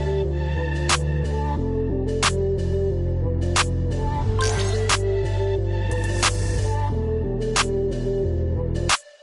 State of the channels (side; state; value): both; identical; correlation 1.00